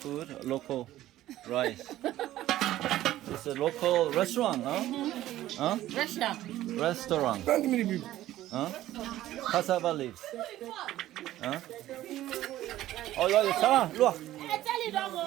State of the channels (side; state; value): left; quieter; 14.3 dB